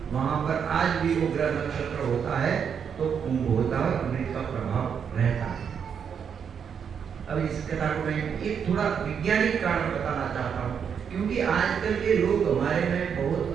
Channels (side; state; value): left; quieter; 7.3 dB